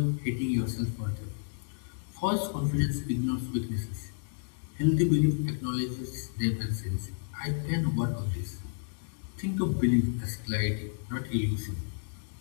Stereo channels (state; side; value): silent; right; digital silence